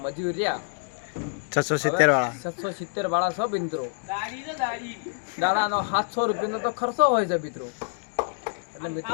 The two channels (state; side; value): silent; right; 60 dB below the other